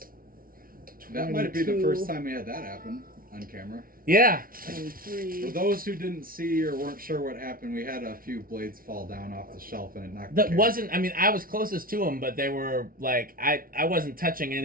22. That might be the first time we had that happen on camera. Yeah. 23. For those who didn't see or weren't sure what happened, we had a few blades fall down off the shelf and it knocked the That camera. wasn't. I mean, I was closest to them, but they were like I wasn't touching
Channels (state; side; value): late; left; 0.42 ms